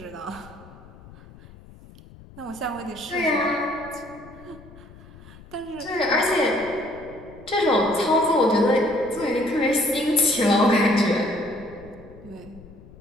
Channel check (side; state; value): left; noise; rumble, 20 dB below the sound